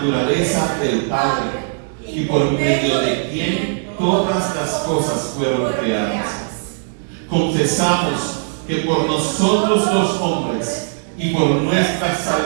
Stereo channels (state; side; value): silent; left; digital silence